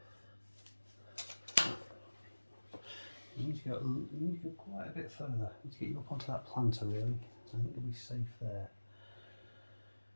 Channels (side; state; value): both; inverted; correlation -1.00